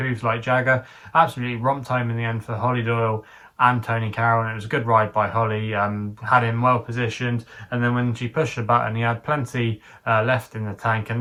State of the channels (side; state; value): both; identical; correlation 1.00